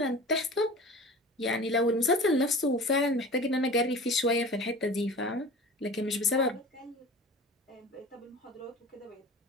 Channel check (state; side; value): normal; both; correlation 0.38